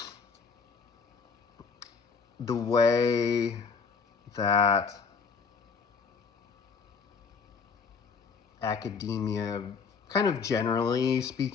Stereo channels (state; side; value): quieter; right; 5.5 dB